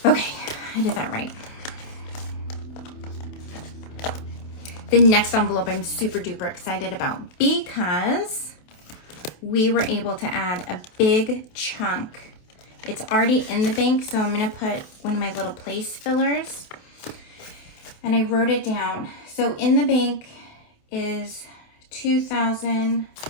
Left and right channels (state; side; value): late; right; 27 ms